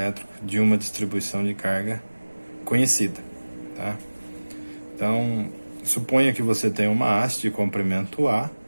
de uma distribuição de carga conhecida, tá? Então, suponha que você tem uma haste de comprimento A,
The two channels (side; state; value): both; inverted; correlation -1.00